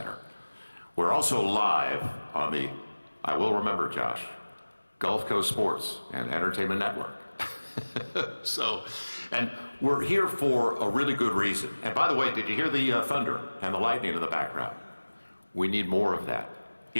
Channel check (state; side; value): inverted; both; correlation -1.00